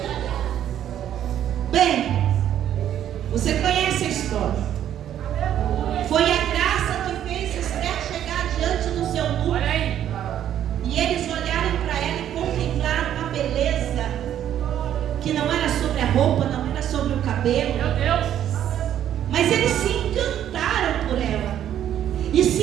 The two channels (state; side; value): quieter; left; 10.7 dB